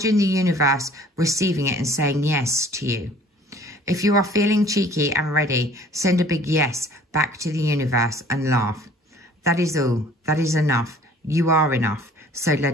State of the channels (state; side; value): normal; both; correlation 0.52